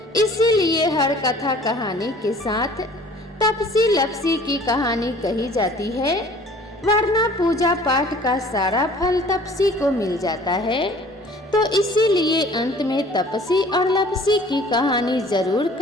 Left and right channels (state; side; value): normal; both; correlation 0.50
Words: इसीलिए हर कथा कहानी के साथ तपसी लपसी की कहानी कही जाती है, वरना पूजा पाठ का सारा फल तपसी को मिल जाता है। तो इसीलिए अंत में तपसी और लपसी की कहानी जरूर